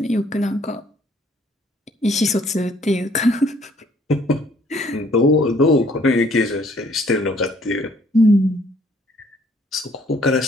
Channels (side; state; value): both; normal; correlation 0.62